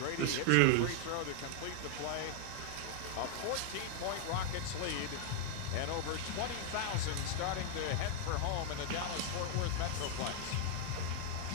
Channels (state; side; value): different; both; correlation 0.00